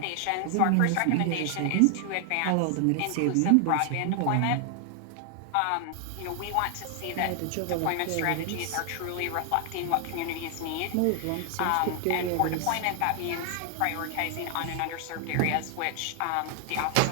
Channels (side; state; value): both; different; correlation 0.00